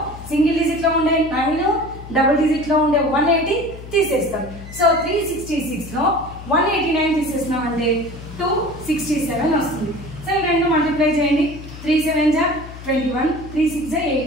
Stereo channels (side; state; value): left; noise; hum, 14 dB below the sound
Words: సింగిల్ డిజిట్లో ఉండే 9 డబుల్ డిజిట్లో ఉండే 180 తీసేస్తాం. సో 366లో 189 తీసేసినామంటే 267 వస్తుంది. సో రెండు మల్టిప్లై చేయండి. 3 7 21, 3 6